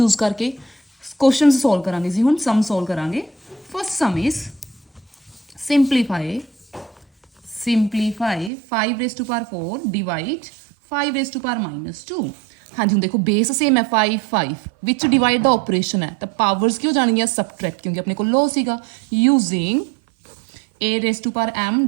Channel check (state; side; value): drops out; left; at 8.5 s